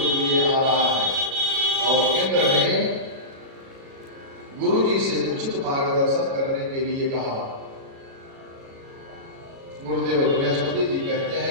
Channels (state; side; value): late; left; 37 ms